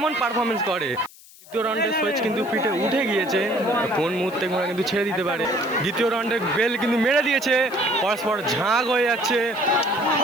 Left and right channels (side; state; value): left; noise; hiss, 22 dB below the sound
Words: পারফরমেন্স করে। দ্বিতীয় রাউন্ডের সুইচ কিন্তু পিঠে উঠে গিয়েছে, কোন মুহূর্তে ঘোড়া কিন্তু ছেড়ে দিতে পারে। দ্বিতীয় রাউন্ডের বেল কিন্তু মেরে দিয়েছে, পরস্পর ঝাঁক হয়ে যাচ্ছে।